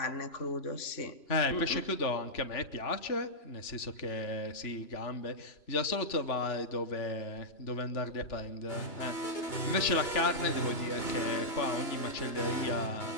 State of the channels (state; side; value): late; right; 3.0 ms